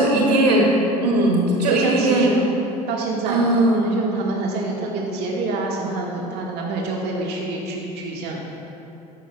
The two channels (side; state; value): both; normal; correlation 0.35